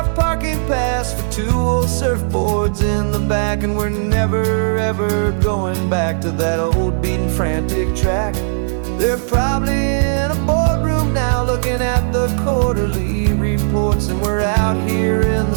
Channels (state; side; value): silent; left; 56 dB below the other